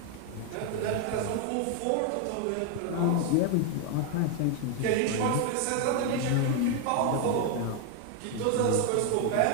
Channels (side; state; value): both; different; correlation 0.01